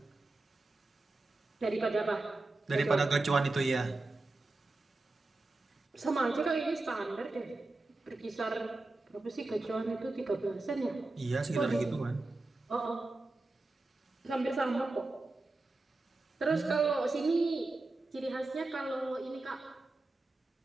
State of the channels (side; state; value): left; quieter; 3.1 dB